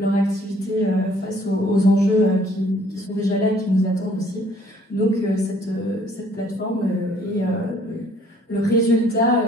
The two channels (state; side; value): normal; both; correlation 0.60